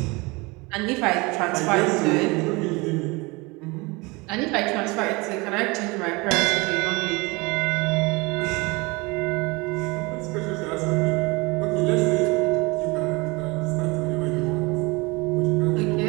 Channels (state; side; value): quieter; left; 25.4 dB